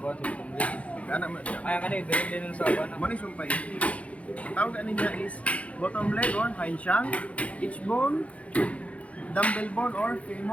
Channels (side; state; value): right; late; 0.064 ms